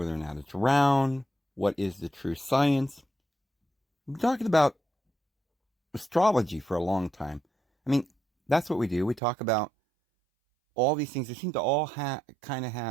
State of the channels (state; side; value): drops out; left; at 9.2 s